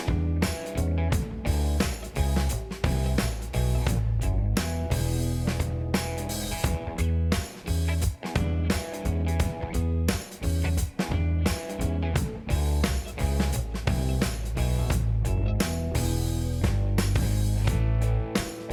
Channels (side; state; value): both; identical; correlation 1.00